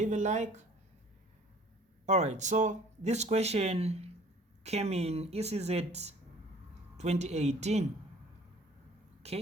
a like. Alright, so this question came in ECZ 2018.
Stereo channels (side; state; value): both; normal; correlation 0.51